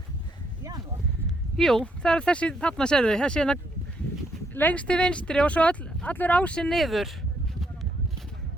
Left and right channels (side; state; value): both; normal; correlation 0.74